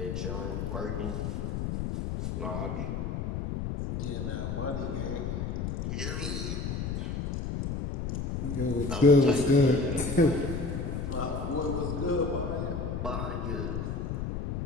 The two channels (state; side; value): noise; left; rumble, 3 dB below the sound